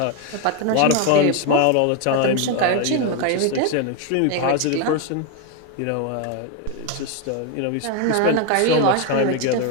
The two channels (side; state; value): both; different; correlation 0.02